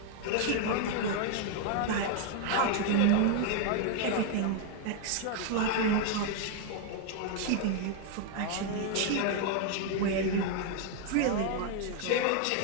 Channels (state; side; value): different; both; correlation 0.01